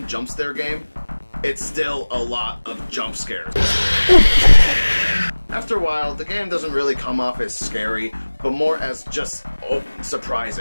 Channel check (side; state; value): both; inverted; correlation -1.00